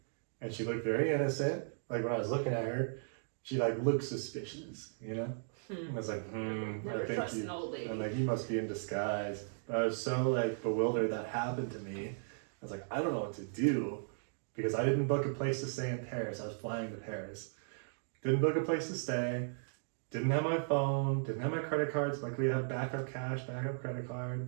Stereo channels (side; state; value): left; silent; digital silence